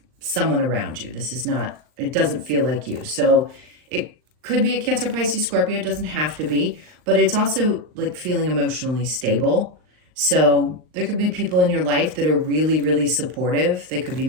someone around you. This is not, it doesn't feel like you. So it could be a Cancer, Pisces, Scorpio. It doesn't have to be, but it's also like feeling emotionally stable. So there could be people in your life that are really, really supportive. They could be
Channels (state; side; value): late; left; 39 ms